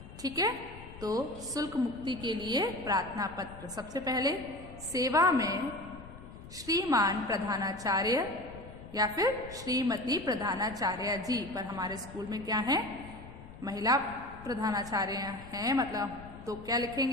ठीक है। तो शुल्क मुक्ति के लिए प्रार्थना पत्र, सबसे पहले सेवा में श्रीमान प्रधानाचार्य या फिर श्रीमती प्रधानाचार्य जी, पर हमारे स्कूल में क्या है? महिला प्रधानाचार्य हैं, मतलब तो क्या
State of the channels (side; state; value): left; noise; rumble, 16 dB below the sound